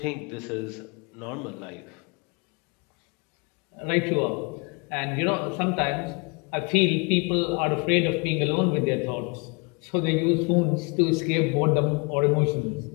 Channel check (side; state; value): right; quieter; 31.9 dB